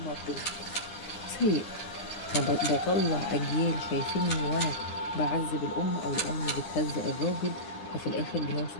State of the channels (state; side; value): late; right; 9.6 ms